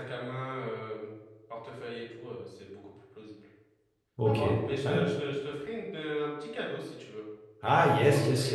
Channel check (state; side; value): identical; both; correlation 1.00